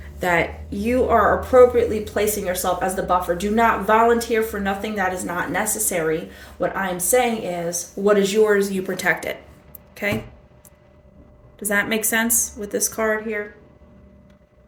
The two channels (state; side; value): identical; both; correlation 1.00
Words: that you are appropriately placing yourself as the buffer. Do not volunteer for nothing that is not necessary. What I'm saying is, what is yours, you protect it. Okay? Does that make sense with this card here?